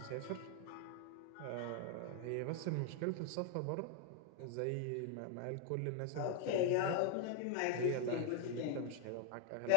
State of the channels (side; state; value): both; different; correlation 0.01